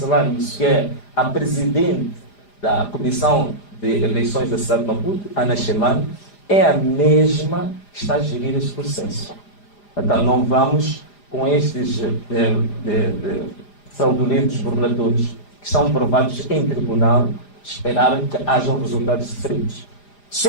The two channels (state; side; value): late; right; 4.9 ms